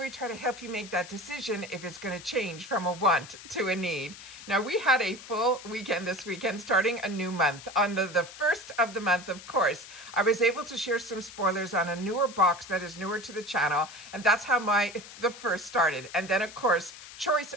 try to help you make that decision if it's going to change from a want to a need. Now we had a full weekend this weekend starting a new month. On the first of the month, of course, I was able to share some spoilers on a newer box that is newer to the channel, and that's how the first started. And then of course Choice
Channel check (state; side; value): noise; left; hiss, 15 dB below the sound